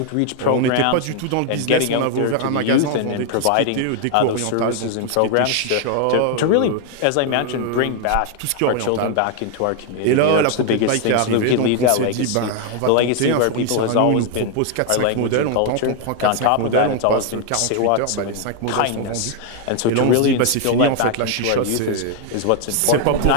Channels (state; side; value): different; both; correlation 0.00